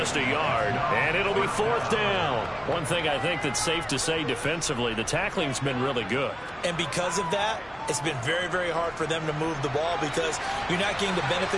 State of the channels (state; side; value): noise; right; hum, 26 dB below the sound